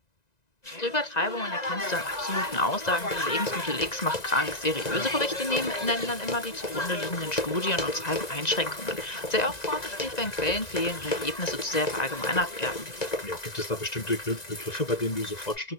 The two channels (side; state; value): right; late; 1.9 ms